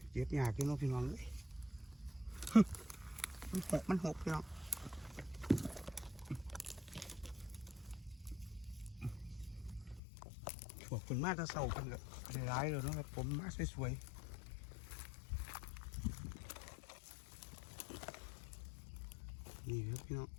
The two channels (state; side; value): drops out; right; at 10.0 s